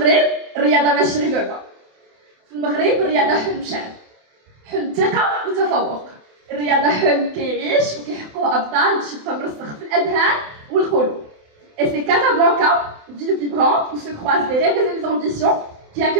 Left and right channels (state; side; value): late; left; 28 ms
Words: الرياضة ماشي غير لعبة. في المغرب الرياضة حلم شعب. حلم ثقة وتفوق. الرياضة حلم كيعيش وكيحققوا أبطال باش يبقى مرسخ في الأذهان والقلوب. Et c'est Casablanca, ville vibrante où se croisent les rêves et les ambitions, qui